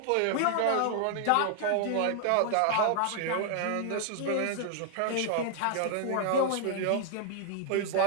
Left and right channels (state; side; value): different; both; correlation 0.00